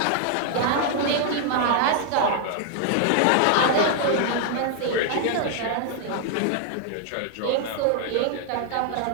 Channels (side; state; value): both; different; correlation 0.00